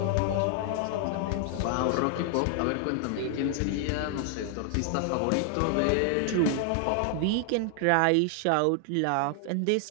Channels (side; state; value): both; different; correlation 0.00